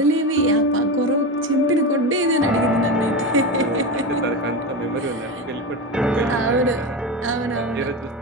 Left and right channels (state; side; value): normal; both; correlation 0.20